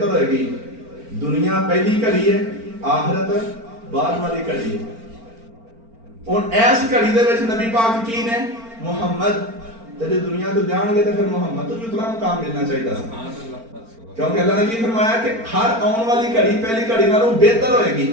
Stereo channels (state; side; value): late; left; 4.4 ms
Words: ہوئے گی دنیا پہلی گھڑی ہے آخرت بعد والی گھڑی ہے اور ایس گھڑی دے وچ نبی پاک کی نے محمد تے جے دنیا تو جان گے تے پھر محمد تو اتنا مقام ملنا چاہیے تھا کیونکہ اللہ نے کی فرمایا کہ ہر آن والی گھڑی پہلی گھڑی نالوں بہتر ہوئے گی